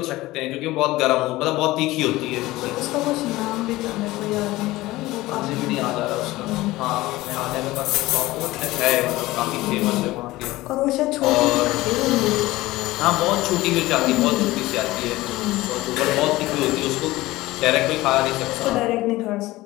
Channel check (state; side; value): quieter; right; 18.4 dB